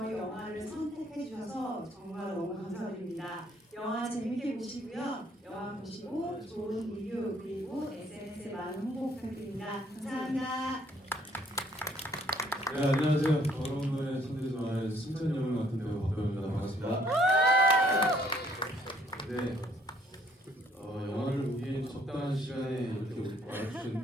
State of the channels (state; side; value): normal; both; correlation 0.64